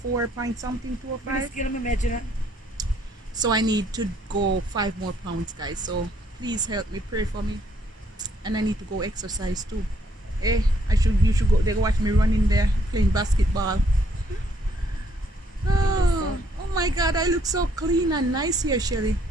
point something, 205. So I need to go 5 more pounds, guys. So please help me, pray for me, and I need to go exercise too. Eh, you should go. They watch me running there playing basketball. Oh my God, I look so clean and nice here, Shelly.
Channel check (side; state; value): both; normal; correlation 0.68